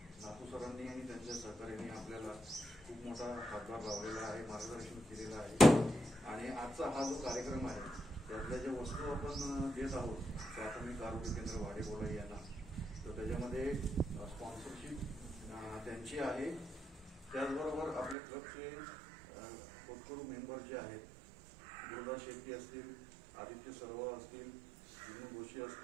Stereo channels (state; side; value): drops out; left; at 18.2 s